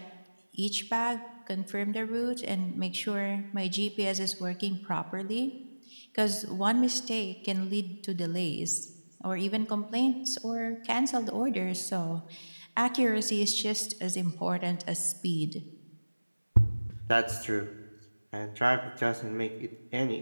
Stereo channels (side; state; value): both; inverted; correlation -1.00